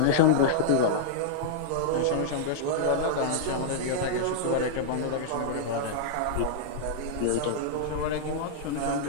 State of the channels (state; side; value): different; both; correlation -0.01